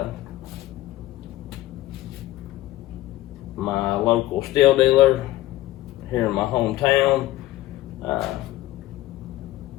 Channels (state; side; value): quieter; right; 15.7 dB